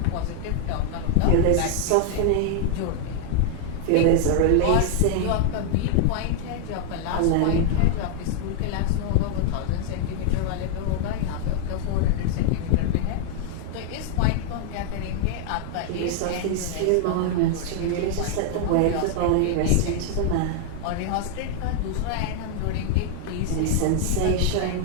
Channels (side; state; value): both; different; correlation 0.00